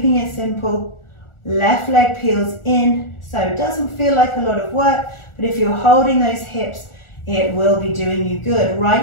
it simple. Left leg peels in, so it doesn't feel like a lot of work, but if you're holding those hips, it will be doing you good.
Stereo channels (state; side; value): late; right; 1.4 ms